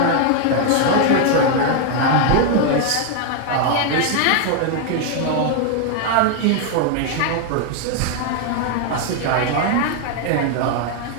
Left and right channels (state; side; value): different; both; correlation 0.00